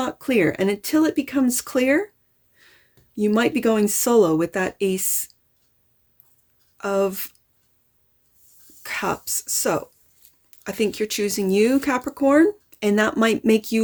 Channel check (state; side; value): identical; both; correlation 1.00